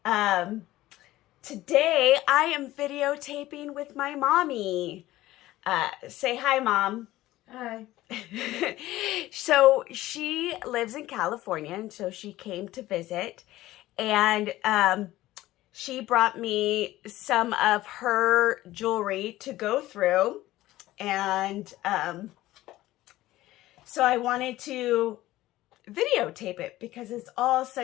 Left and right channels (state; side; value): quieter; right; 16.2 dB